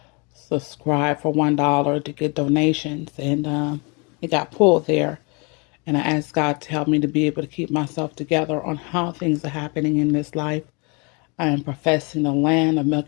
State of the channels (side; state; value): right; quieter; 31.3 dB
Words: Subscribe for $1 to get donations, and it got pulled there. And I asked God to help me to be able to keep myself together on how things are happening in this life. I am professing the land of